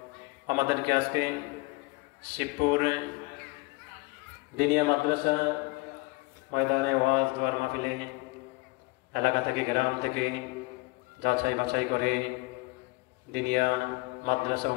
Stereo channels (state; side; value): quieter; right; 25.4 dB